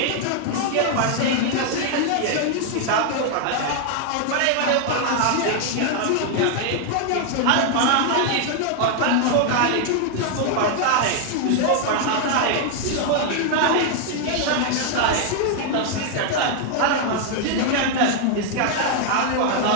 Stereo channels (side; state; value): both; different; correlation 0.00